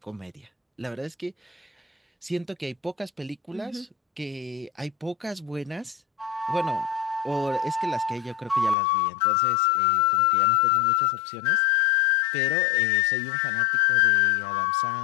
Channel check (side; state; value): right; drops out; at 8.8 s